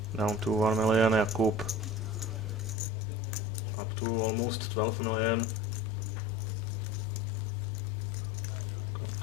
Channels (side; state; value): right; drops out; at 2.8 s